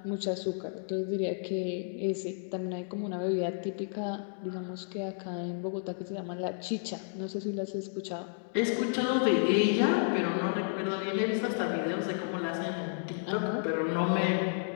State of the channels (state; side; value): silent; right; digital silence